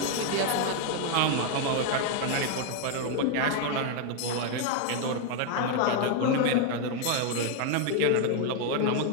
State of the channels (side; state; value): both; different; correlation 0.01